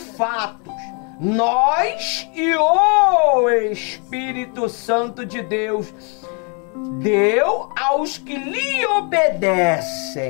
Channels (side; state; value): right; quieter; 36.4 dB